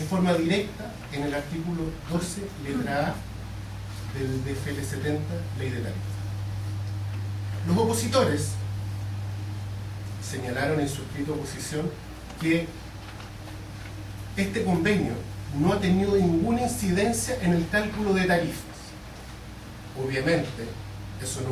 forma directa en el artículo 12, letra A del DFL 70, Ley de Tarifas. Los opositores señalaron en su escrito de oposición que este convenio no ha tenido ninguna incidencia en el cálculo de tarifas. Obviamente, eso no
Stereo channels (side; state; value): both; identical; correlation 1.00